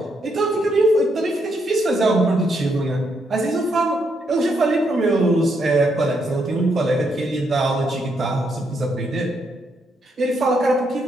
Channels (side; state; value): both; normal; correlation 0.77